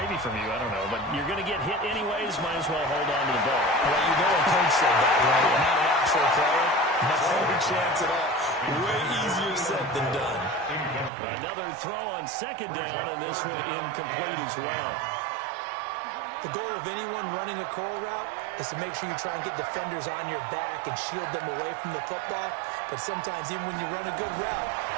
from you, I don't know, but you're going to get hit anyways, might as well hold on to the ball. Well, you know a coach said that, right? Not an actual player. No chance at all. Way easier said than done. Another throw on second down, and this one incomplete as well. The goal of anyone running a curl route is to make sure you try and get defenders on your back and shield them away from the football. But sometimes even when you run a good route,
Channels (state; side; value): drops out; left; at 11.1 s